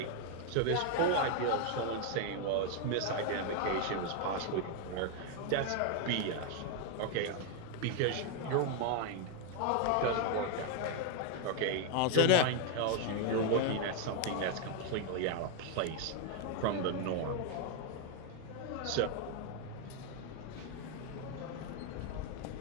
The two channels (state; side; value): different; both; correlation 0.01